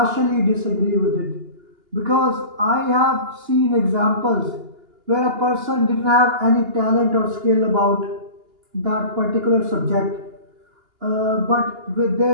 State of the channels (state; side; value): late; left; 2.8 ms